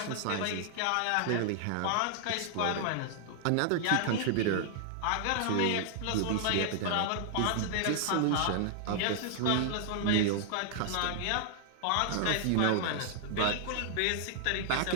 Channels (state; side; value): different; both; correlation -0.01